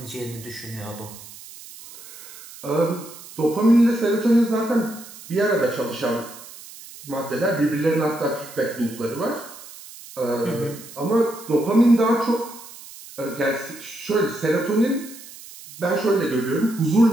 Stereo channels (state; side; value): noise; right; hiss, 17 dB below the sound